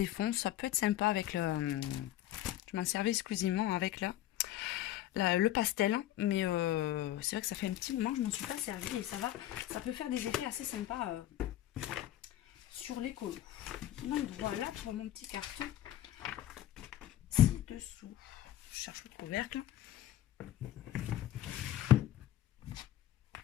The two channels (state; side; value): quieter; right; 13.3 dB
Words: fonds. Ça peut être sympa avec le... Je m'en servais exclusivement avec le pastel. Mais c'est vrai que ça fait un petit moment que je ne m'en suis pas servi. Et ça peut faire des effets assez sympas sur les colos. Donc voilà pour mon petit carton. Dessous, je cherche le couvercle.